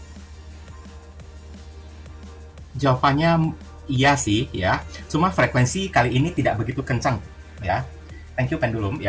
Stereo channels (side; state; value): both; identical; correlation 1.00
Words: Jawabannya iya sih ya, cuma frekuensi kali ini tidak begitu kencang ya. Thank you pendulum